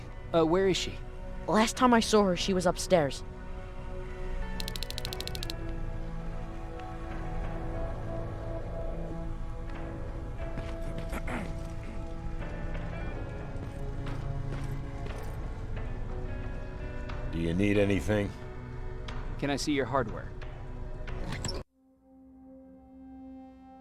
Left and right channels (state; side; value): identical; both; correlation 1.00